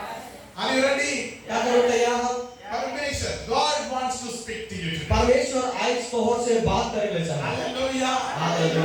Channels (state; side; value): identical; both; correlation 1.00